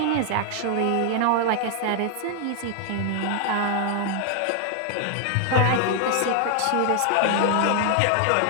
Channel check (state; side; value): different; both; correlation 0.00